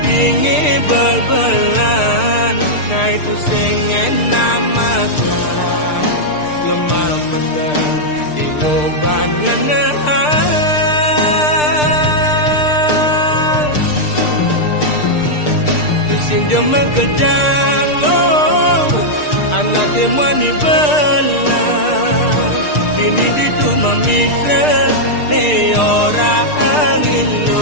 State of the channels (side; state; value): right; late; 6.6 ms